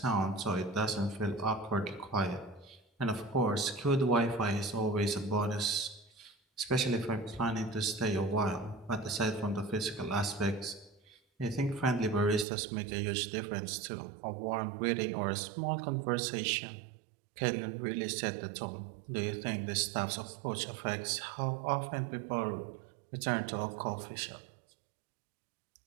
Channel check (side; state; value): left; drops out; at 12.5 s